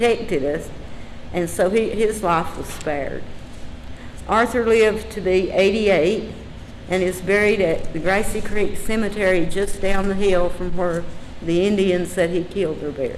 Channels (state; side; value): identical; both; correlation 1.00